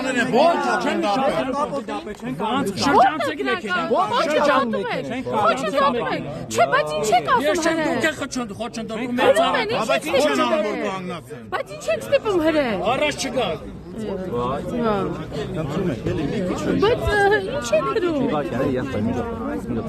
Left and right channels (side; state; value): both; identical; correlation 1.00